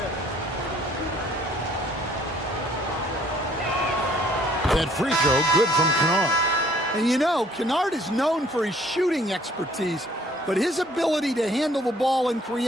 That free throw good from Kennard. And you know, Kennard is known for his shooting expertise, but his ability to handle the ball and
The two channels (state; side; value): normal; both; correlation 0.59